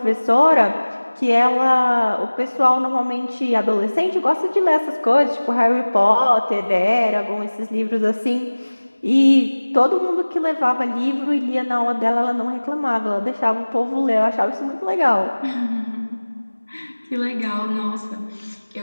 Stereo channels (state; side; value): inverted; both; correlation -1.00